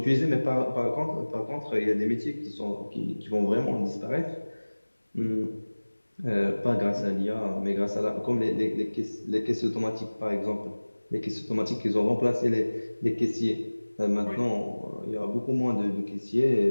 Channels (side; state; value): both; inverted; correlation -1.00